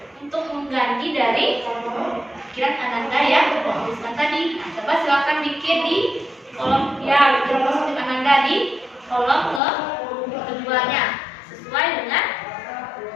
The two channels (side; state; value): right; drops out; at 9.6 s